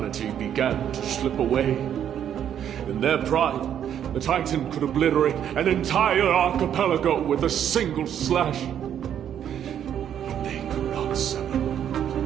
began to slip away. In their pride, the Titan could obliterate an entire archipelago with a single slash. But they could not sever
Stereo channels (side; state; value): left; quieter; 9.5 dB